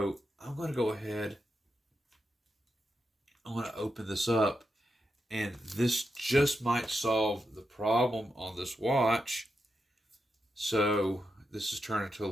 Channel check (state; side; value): normal; both; correlation 0.86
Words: I'm going to go ahead. I'm going to open this up, and this just might solve the problem on this watch. So this is turning into a